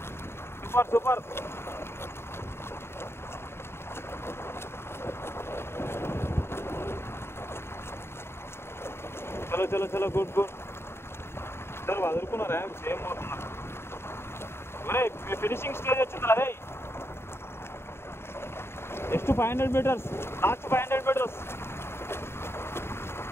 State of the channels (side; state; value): right; late; 0.12 ms